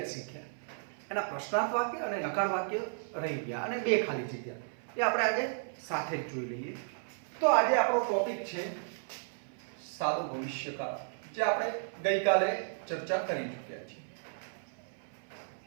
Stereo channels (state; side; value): silent; left; 55 dB below the other